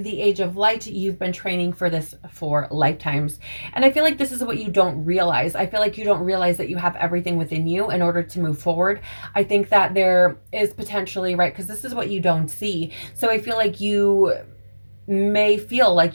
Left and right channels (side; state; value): both; inverted; correlation -1.00